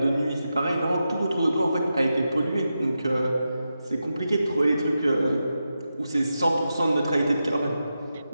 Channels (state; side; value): inverted; both; correlation -0.89